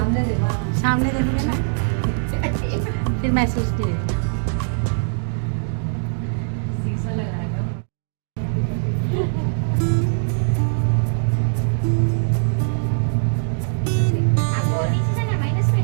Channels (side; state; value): left; silent; digital silence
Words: देखो, सामने देखोगे ना फिर महसूस कीजिए।